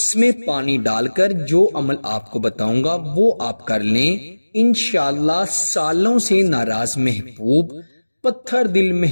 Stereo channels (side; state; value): both; inverted; correlation -1.00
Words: میں پانی ڈال کر جو عمل آپ کو بتاؤں گا وہ آپ کر لیں۔ انشاءاللہ سالوں سے ناراض محبوب، پتھر دل